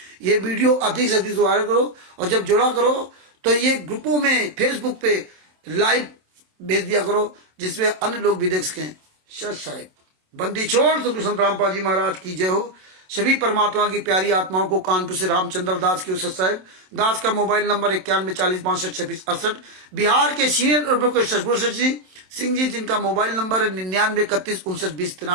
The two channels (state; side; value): late; left; 27 ms